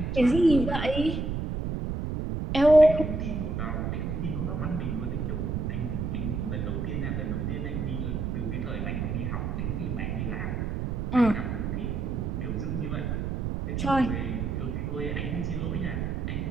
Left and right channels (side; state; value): right; noise; rumble, 2 dB below the sound